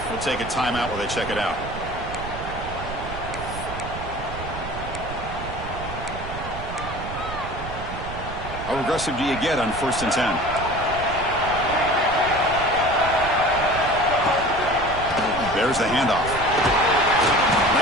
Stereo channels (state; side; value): noise; right; rumble, 9 dB below the sound